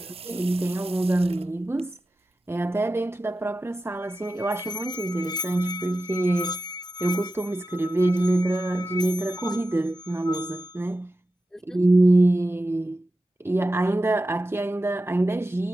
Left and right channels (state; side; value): normal; both; correlation 0.92